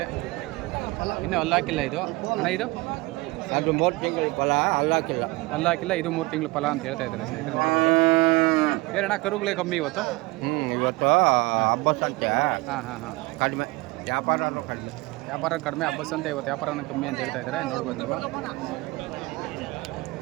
ಇನ್ನೂ ಅಲ್ಲಾಕಿಲ್ಲ ಇದು. ಅಣ್ಣ ಇದು ಅದು 3 ತಿಂಗಳ ಫಲ, ಅಲ್ಲಾಕಿಲ್ಲ. ಅಲ್ಲಾಕಿಲ್ಲ, ಇದು 3 ತಿಂಗಳ ಫಲ ಅಂತ ಹೇಳ್ತಾ ಇದ್ದಾರೆ ಸ್ನೇಹಿತರೆ. ಏನಣ್ಣ ಕರುಗಳೇ ಕಮ್ಮಿ ಇವತ್ತು? ಇವತ್ತು ಹಬ್ಬ ಸಂತೆ ಕಡಿಮೆ, ವ್ಯಾಪಾರನೂ ಕಡಿಮೆ. ವ್ಯಾಪಾರ ಕಡಿಮೆ, ಹಬ್ಬ ಸಂತೆ ಇವತ್ತು ವ್ಯಾಪಾರನೂ ಕಮ್ಮಿ ಅಂತ ಹೇಳ್ತಾ ಇದ್ದಾರೆ. ನೋಡ್ಬೋದು ನೀವು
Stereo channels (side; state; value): left; quieter; 22.7 dB